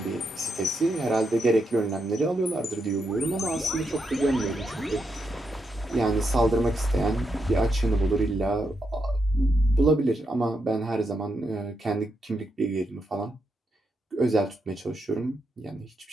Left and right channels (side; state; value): both; normal; correlation 0.82